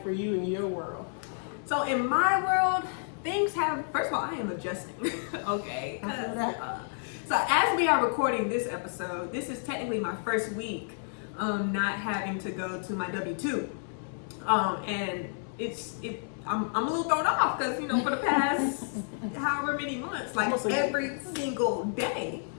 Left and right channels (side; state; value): right; silent; digital silence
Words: for you in your world? So in my world, things have, first of all, I am adjusting. Okay. So as we are recording this episode, this is technically my first week not having to go to my W-2. And I'm a little thrown off because, you know, for the past however many months, like every single day,